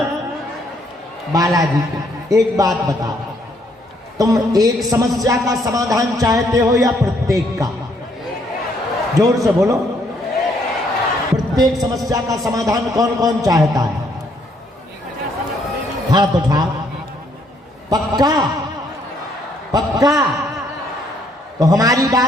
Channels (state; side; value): normal; both; correlation 0.69